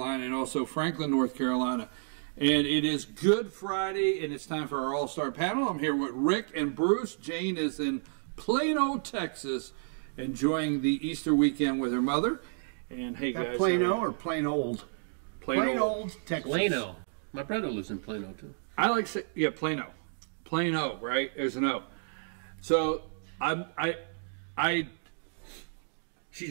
and also Franklin, North Carolina. And it is Good Friday, and it's time for our All-Star panel. I'm here with Rick and Bruce. Jane is in Plano, Texas, enjoying the Easter weekend with her mother. And hey, guys. Plano or plain old? Plain old, Texas. Plano. My brother lives in Plano, too. I like to say, yeah, Plano. Plano, right? There's an O. So,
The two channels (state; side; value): silent; left; digital silence